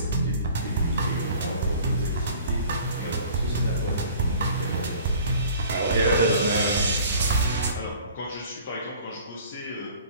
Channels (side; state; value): both; inverted; correlation -0.48